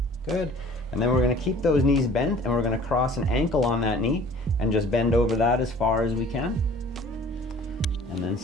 Good. And then we're going to keep those knees bent, and we're going to cross an ankle on that knee and just bend over that as far as we can. And then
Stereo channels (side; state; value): both; normal; correlation 0.49